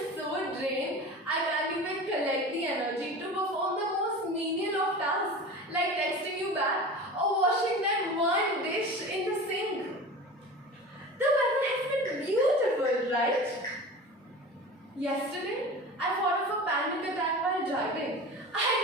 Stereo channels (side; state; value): both; normal; correlation 0.34